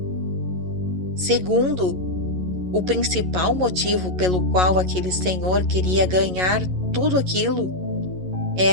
Segundo, o principal motivo pelo qual aquele senhor queria ganhar tudo aquilo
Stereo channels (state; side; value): late; left; 11 ms